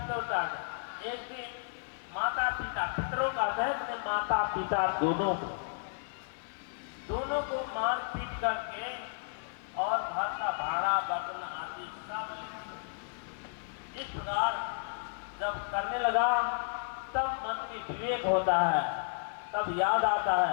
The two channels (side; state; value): right; silent; 55 dB below the other